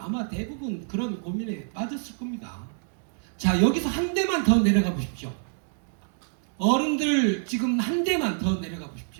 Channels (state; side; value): silent; left; digital silence